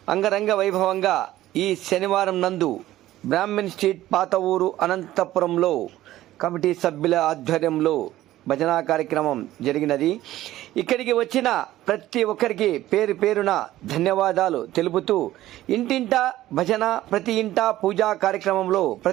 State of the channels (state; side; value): quieter; left; 14.7 dB